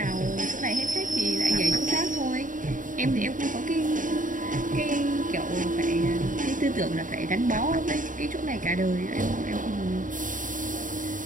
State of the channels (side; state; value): left; late; 0.38 ms